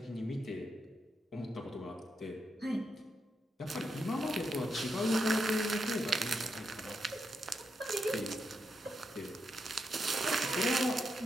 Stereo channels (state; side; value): normal; both; correlation 0.83